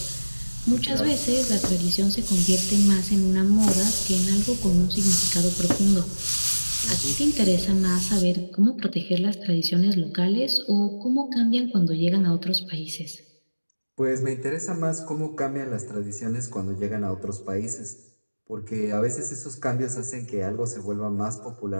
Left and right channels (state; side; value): inverted; both; correlation -1.00